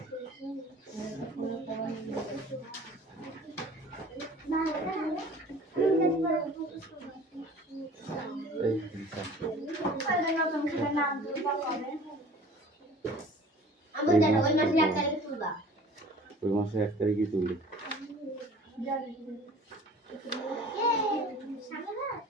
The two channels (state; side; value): normal; both; correlation 0.46